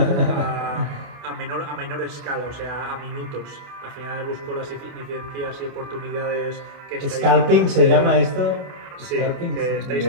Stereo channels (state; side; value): late; left; 28 ms